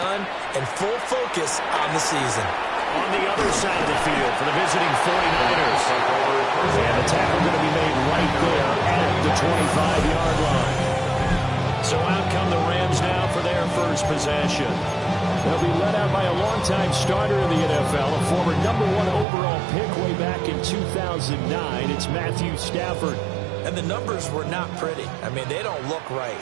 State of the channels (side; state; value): left; drops out; at 19.2 s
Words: and full focus on the season. On the other side of the field for the visiting 49ers. And the tackle going to be made right there at the 25-yard line. So out come the Rams now for their first possession. They'll be led out by a longtime starter in the NFL, a former #1 overall pick way back in 2009. It's Matthew Stafford. And the numbers were not pretty. I mean, they don't look right.